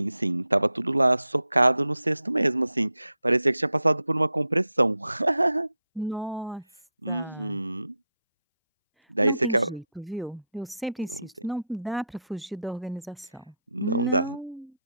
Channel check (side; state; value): both; inverted; correlation -0.82